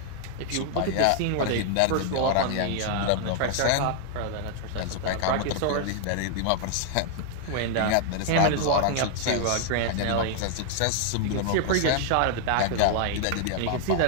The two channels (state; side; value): different; both; correlation 0.00